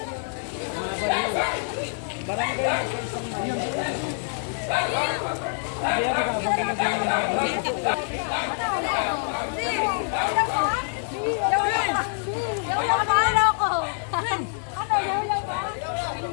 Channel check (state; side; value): silent; right; digital silence